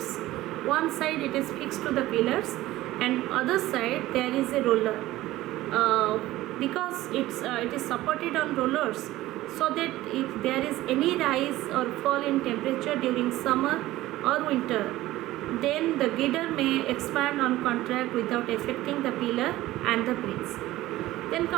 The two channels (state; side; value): quieter; left; 16.4 dB